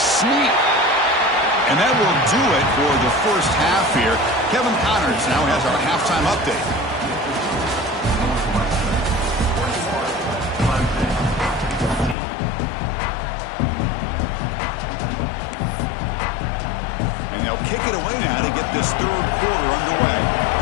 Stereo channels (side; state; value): right; drops out; at 12.2 s